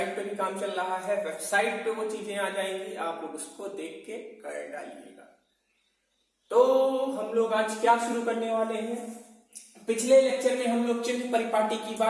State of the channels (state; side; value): identical; both; correlation 1.00